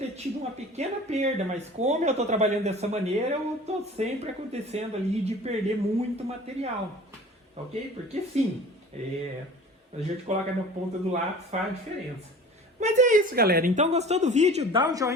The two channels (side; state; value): both; normal; correlation 0.42